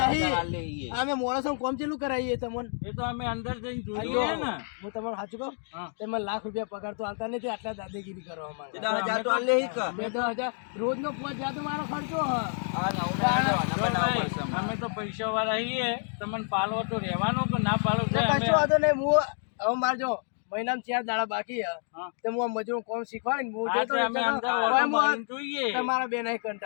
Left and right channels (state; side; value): silent; right; 56 dB below the other